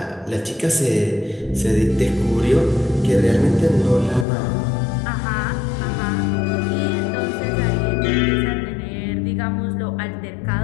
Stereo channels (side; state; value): right; drops out; at 4.2 s